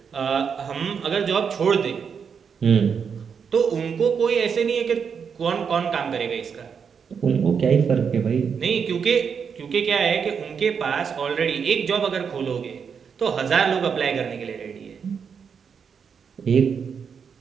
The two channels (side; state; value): left; quieter; 6.6 dB